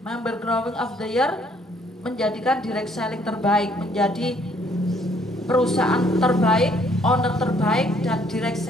Growing of the Year, menjadikan direct selling terbaik, menjadi perusahaan terbaik, owner terbaik, dan direct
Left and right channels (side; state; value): both; normal; correlation 0.64